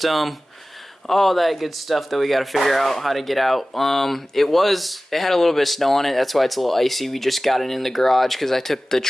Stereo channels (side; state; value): both; normal; correlation 0.97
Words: All that good stuff that we got to figure out how to get out. It had a little bit of snow on it. That's why it's a little icy. We just got it in the garage because I took the